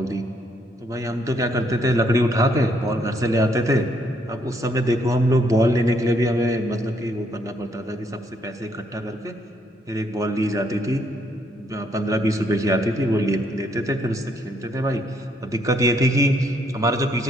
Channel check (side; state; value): both; normal; correlation 0.71